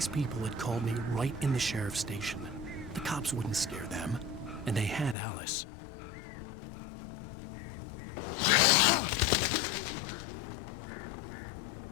people had called me right in the sheriff's station. The cops wouldn't scare them, and they had Alice.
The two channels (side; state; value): right; drops out; at 5.2 s